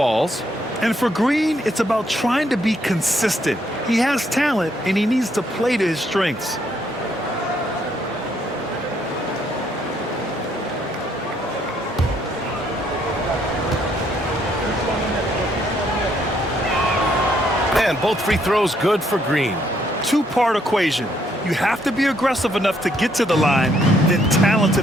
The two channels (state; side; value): normal; both; correlation 0.71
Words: And for Green, it's about trying to be consistent. He has talent, and he needs to play to his strengths. And both free throws good for Green. 2-part equation. You have to be aggressive enough to get to the line, then